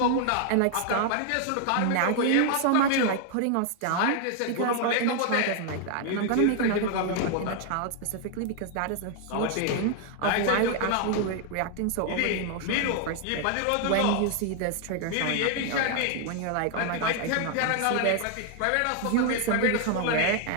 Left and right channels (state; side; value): different; both; correlation 0.00